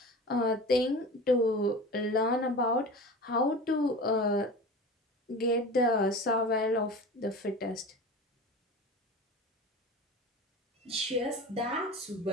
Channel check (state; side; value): normal; both; correlation 0.34